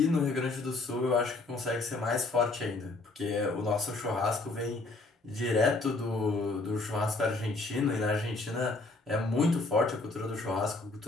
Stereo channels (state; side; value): quieter; right; 3.2 dB